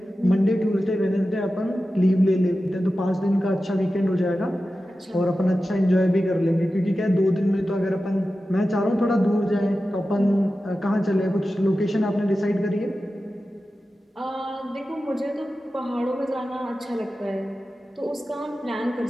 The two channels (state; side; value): normal; both; correlation 0.93